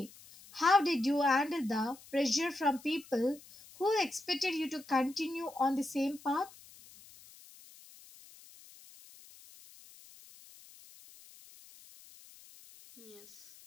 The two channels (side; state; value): left; noise; hiss, 22 dB below the sound